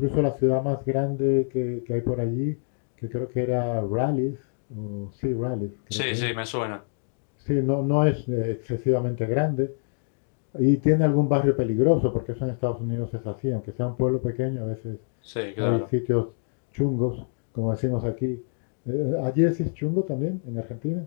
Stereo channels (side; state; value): right; silent; digital silence